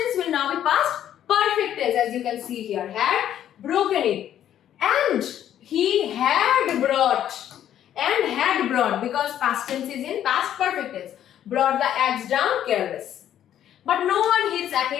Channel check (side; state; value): right; quieter; 10.8 dB